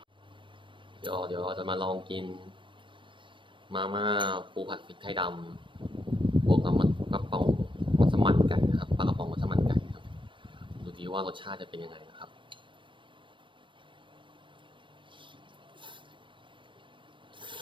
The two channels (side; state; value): left; late; 0.24 ms